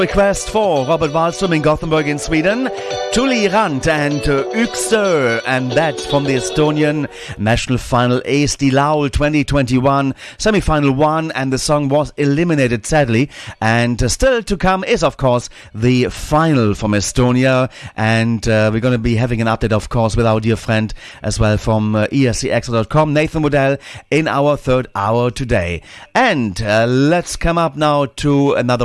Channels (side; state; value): both; identical; correlation 1.00